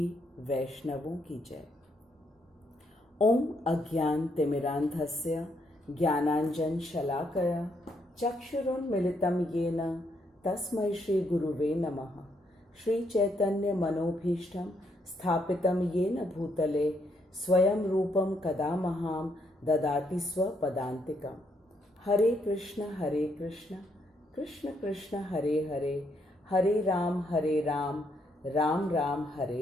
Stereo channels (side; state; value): both; normal; correlation 0.75